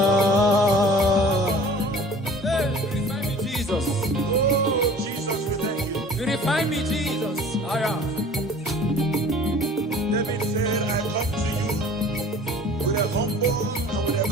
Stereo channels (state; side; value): normal; both; correlation 0.46